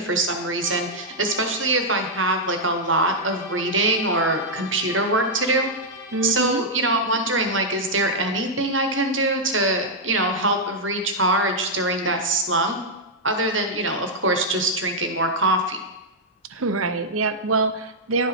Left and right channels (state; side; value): normal; both; correlation -0.05